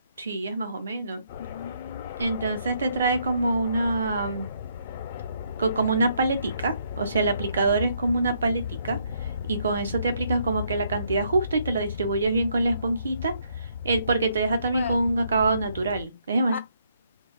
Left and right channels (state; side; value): inverted; both; correlation -0.72